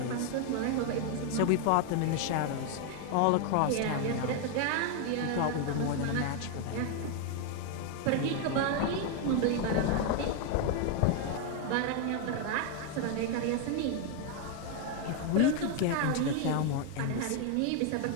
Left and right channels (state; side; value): different; both; correlation 0.00